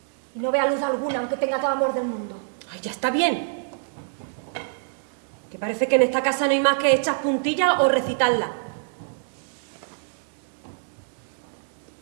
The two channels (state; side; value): silent; left; digital silence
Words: Y no vea luz alguna, aunque tenga todo el amor del mundo. Ay, ya está bien. Que parece que en esta casa no hay más que echar puntillas o recitarlas.